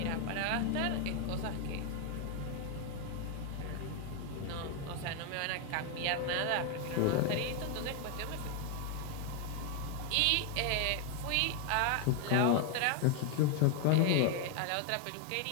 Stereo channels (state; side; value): different; both; correlation 0.01